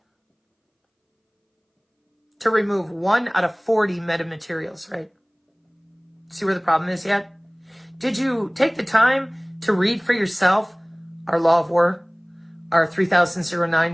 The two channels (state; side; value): identical; both; correlation 1.00